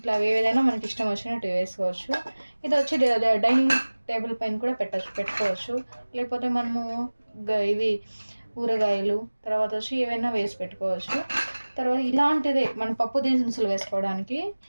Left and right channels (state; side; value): inverted; both; correlation -1.00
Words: ఏదైనా మనకి ఇష్టం వచ్చినట్టు వేసుకోవచ్చు. ఇది వచ్చి డైనింగ్ టేబుల్ పైన కూడా పెట్టుకోవచ్చు. లేకపోతే మనము ఇవి ఊరగాయలు తర్వాత వచ్చి ఏవైనా వేసి పెట్టుకోవచ్చు. తర్వాత ఇలాంటిదే మన పప్పు దినుసులు వేసుకోవడానికి.